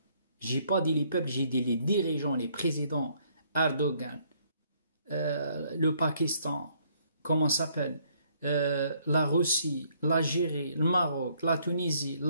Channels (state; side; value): inverted; both; correlation -0.66